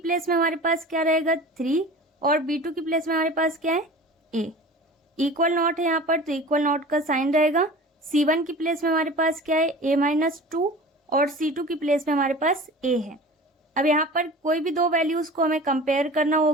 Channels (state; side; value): normal; both; correlation 0.39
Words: में हमारे पास क्या रहेगा, 3, और b2 की प्लेस में हमारे पास क्या है, a। इक्वल नॉट है यहाँ पर, तो इक्वल नॉट का साइन रहेगा। c1 की प्लेस में हमारे पास क्या है, a माइनस 2, और c2 की प्लेस में हमारे पास a है। अब यहाँ पर कोई भी दो वैल्यूज को हमें कंपेयर करना